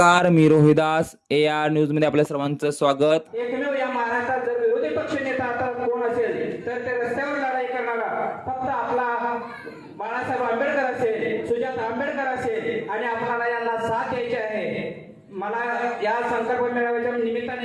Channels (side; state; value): both; identical; correlation 1.00